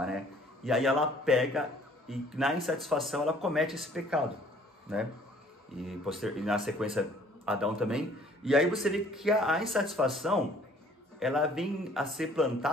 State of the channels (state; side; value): normal; both; correlation 0.56